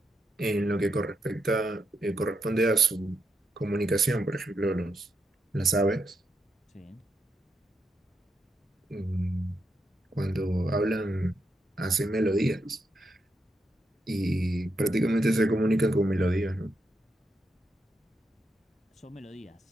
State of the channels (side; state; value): both; normal; correlation 0.82